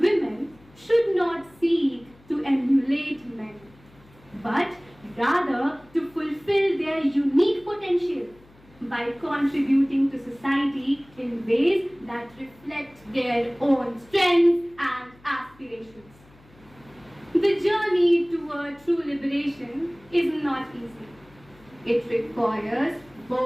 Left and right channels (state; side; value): noise; left; hum, 27 dB below the sound